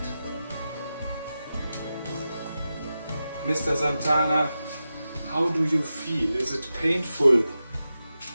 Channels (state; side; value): inverted; both; correlation -0.92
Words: Mr. Santana, how do you feel? Is it painful?